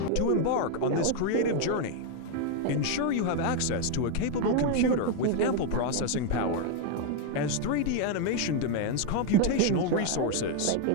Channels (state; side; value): different; both; correlation 0.01